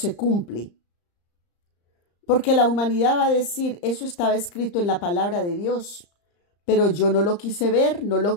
cumple. Porque la humanidad va a decir, eso estaba escrito en la palabra de Dios, pero yo no lo quise ver, no lo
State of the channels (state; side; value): late; right; 35 ms